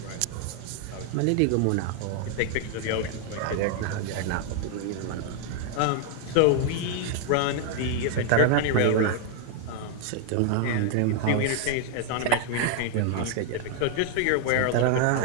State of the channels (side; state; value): both; different; correlation 0.00